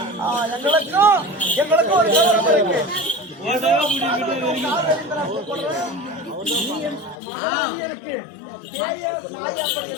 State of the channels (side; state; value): right; drops out; at 7.2 s